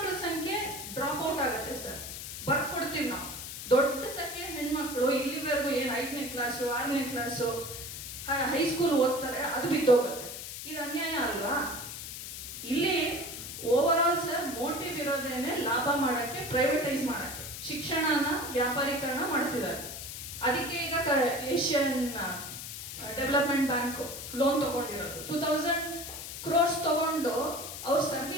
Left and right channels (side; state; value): left; noise; hiss, 8 dB below the sound